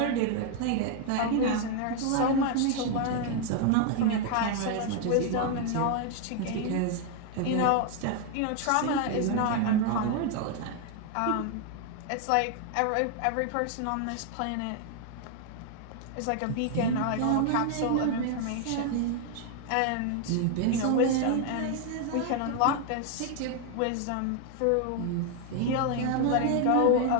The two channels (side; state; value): both; different; correlation 0.00